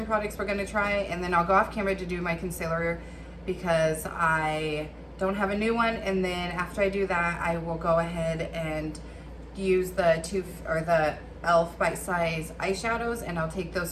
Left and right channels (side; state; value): both; identical; correlation 1.00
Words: products we're going to try, and then I'll go off camera to do my concealer because I don't have a new one. And then after I do that, I will go ahead and use the e.l.f. Bite Size eyeshadows, and I'll take